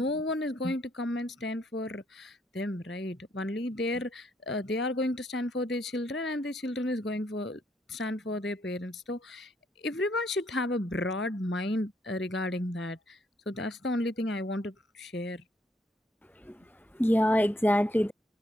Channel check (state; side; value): normal; both; correlation 0.71